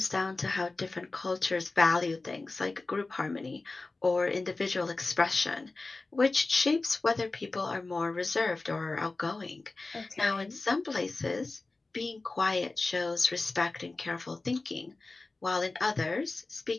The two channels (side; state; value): right; quieter; 3.4 dB